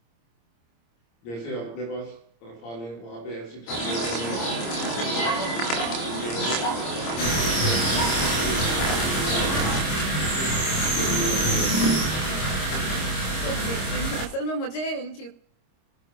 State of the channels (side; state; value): right; late; 26 ms